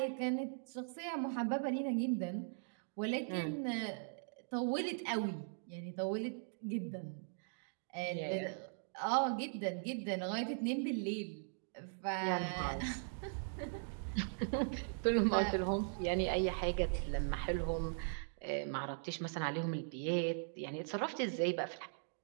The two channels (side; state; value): left; silent; digital silence